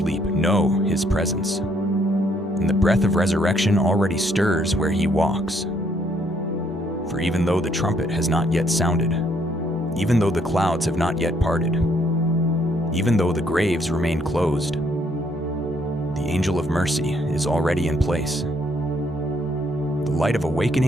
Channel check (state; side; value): normal; both; correlation 0.69